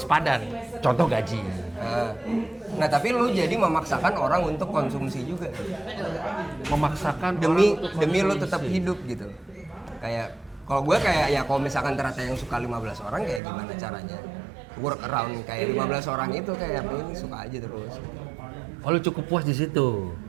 sepadan. Contoh gaji. Nah tapi lo jadi memaksakan orang untuk konsumsi juga. Memaksakan Demi lo tetap hidup gitu. Kayak kalau gue kayak ya kalau misalkan ternyata yang suka 15 orang kayak gimana caranya work around kayak 15 orang itu kayak ini suka aja terus. Oh, lu cukup puas di situ.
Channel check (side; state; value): left; drops out; at 13.4 s